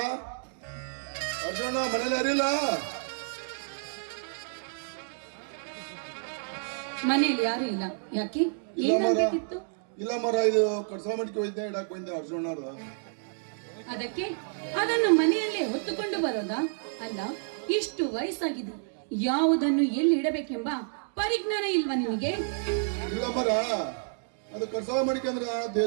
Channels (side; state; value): left; silent; digital silence